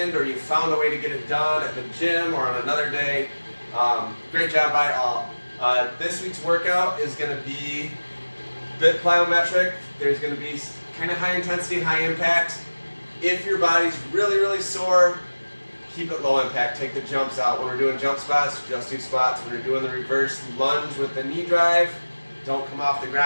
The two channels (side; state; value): both; inverted; correlation -1.00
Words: or you found a way to get it done at the gym or on another day. Great job by all. This week's workout is going to be a bit plyometric. There's going to be kind of high intensity, high impact. If your body's really, really sore, keep it low impact. Take the jumps out. When we're doing jump squats, just do squats. When we're doing the reverse lunge with the knee drive, don't come off the